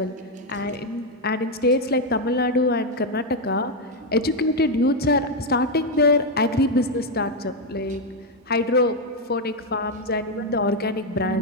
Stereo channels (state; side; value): normal; both; correlation 0.04